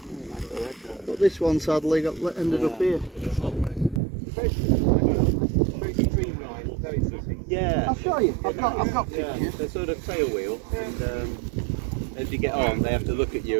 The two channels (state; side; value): drops out; left; at 4.0 s